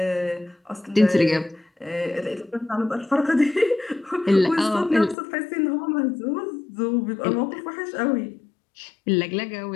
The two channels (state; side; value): drops out; right; at 5.2 s